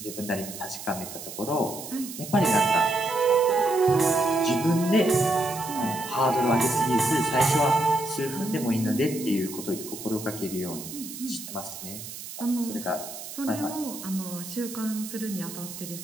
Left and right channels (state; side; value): noise; right; hiss, 11 dB below the sound